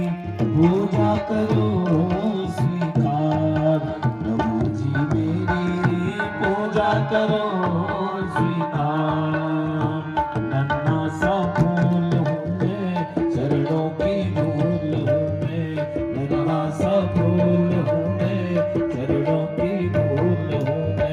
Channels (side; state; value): both; identical; correlation 1.00